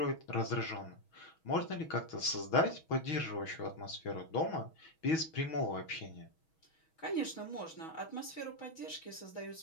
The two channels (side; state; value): right; late; 6.3 ms